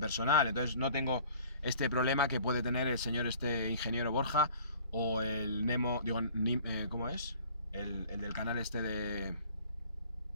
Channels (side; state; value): both; inverted; correlation -0.50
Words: personal, entonces no tengo este problema que puede tener el señor ingeniero Borja o el Nemo, digo, ¿cómo es? El del canal de...